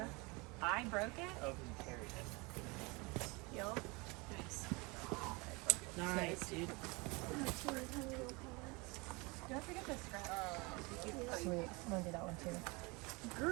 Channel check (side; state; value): left; quieter; 26.7 dB